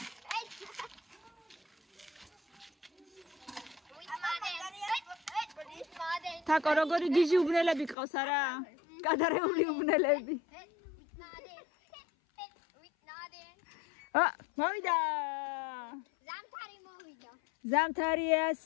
თაკო როგორი გიჟი უბნელები ყავს არა? გადარეული უბნელები. მოვიდა. ზამთარია,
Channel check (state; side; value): drops out; right; at 8.0 s